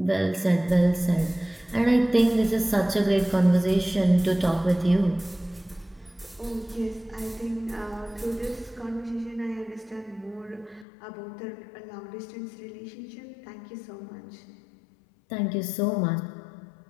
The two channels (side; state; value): right; drops out; at 10.9 s